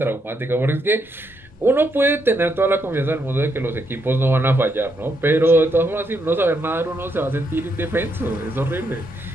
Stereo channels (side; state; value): both; normal; correlation 0.78